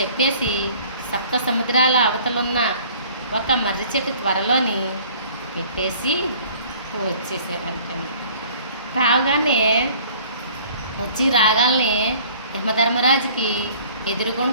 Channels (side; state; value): both; inverted; correlation -0.51